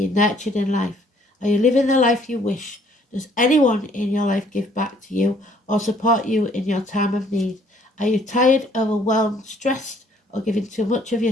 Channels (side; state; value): both; normal; correlation 0.62